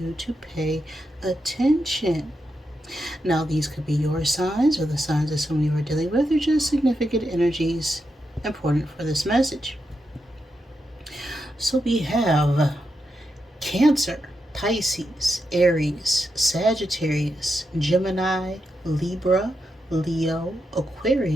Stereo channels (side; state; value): both; normal; correlation 0.85